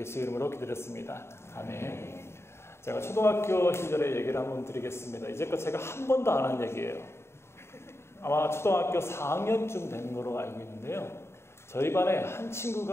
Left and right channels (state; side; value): late; right; 0.12 ms